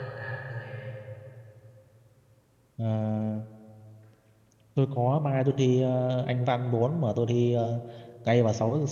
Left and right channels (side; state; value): both; identical; correlation 1.00